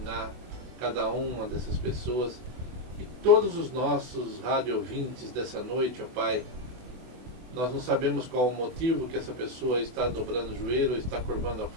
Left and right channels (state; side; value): late; left; 24 ms